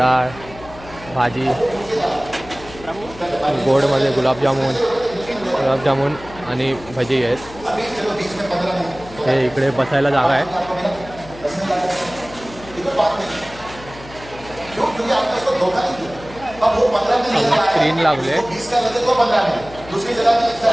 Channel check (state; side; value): noise; left; hum, 17 dB below the sound